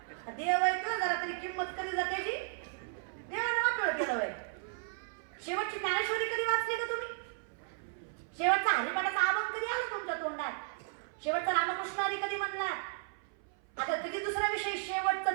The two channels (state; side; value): silent; left; 55 dB below the other